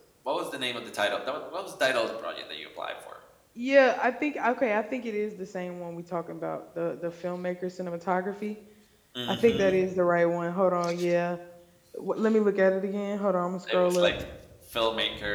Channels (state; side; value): identical; both; correlation 1.00